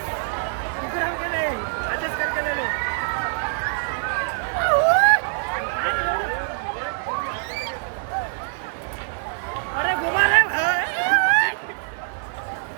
दिख रहा हो नहीं एडजस्ट करके ले लो अरे घुमा ले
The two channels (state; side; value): silent; left; 63 dB below the other